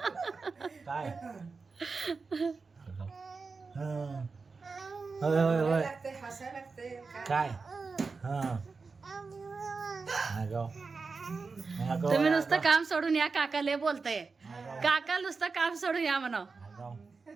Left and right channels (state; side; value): quieter; left; 4.5 dB